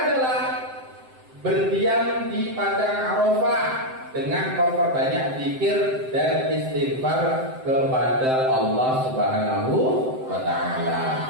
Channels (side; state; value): left; late; 7.8 ms